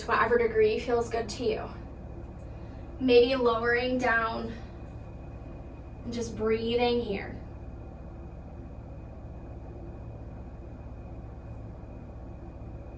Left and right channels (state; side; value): identical; both; correlation 1.00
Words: whatever degree feels good to you. Maybe lowering down. And just breathing here.